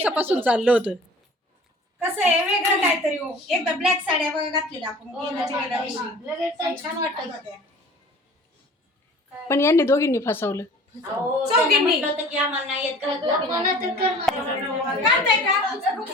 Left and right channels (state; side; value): normal; both; correlation 0.45